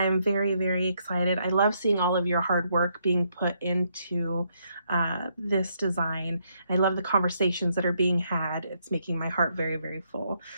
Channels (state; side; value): inverted; both; correlation -0.74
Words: very, very excited. I love seeing all of your hard work being put into this design. I love the conversations that are being had. It's making my heart very, very full.